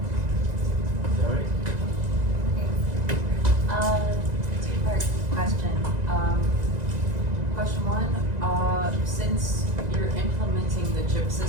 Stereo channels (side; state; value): left; late; 2.0 ms